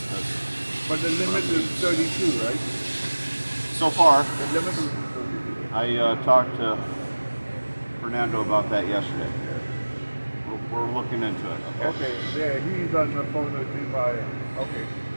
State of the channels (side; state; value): both; inverted; correlation -1.00